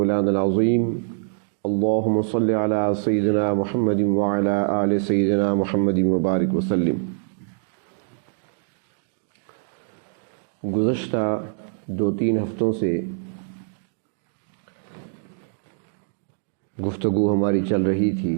العظیم اللہم صل علی سیدنا محمد وعلی آل سیدنا محمد وبارک وسلم۔ گزشتہ 2-3 ہفتوں سے گفتگو ہماری چل رہی تھی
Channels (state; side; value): silent; left; digital silence